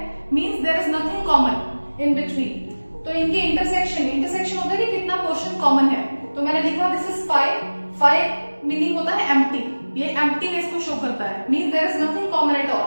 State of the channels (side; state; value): both; inverted; correlation -1.00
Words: means there is nothing common in between. तो इनके इंटरसेक्शन होता है कि कितना पोर्शन कॉमन है। तो मैंने लिखा दिस इज 5 मीनिंग होता है एम्प्टी, ये एम्प्टीनेस को शो करता है, means there is nothing common at